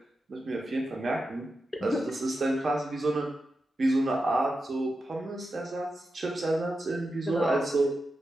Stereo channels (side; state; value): both; normal; correlation 0.90